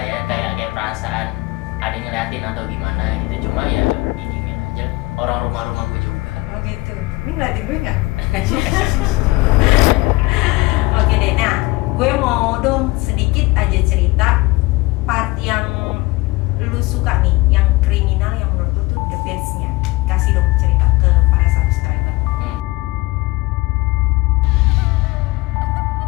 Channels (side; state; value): right; quieter; 21.5 dB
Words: ya, kayak perasaan ada yang ngeliatin atau gimana gitu. Cuma ya didiemin aja, orang rumah gue juga. Oh gitu. Ini ngeliatin gue nggak? Oke deh. Nah, gue mau dong sedikit aja cerita part yang lu suka nih, yang kriminal yang menurut lu tuh the best-nya. Kasih dong cerita ke para subscriber.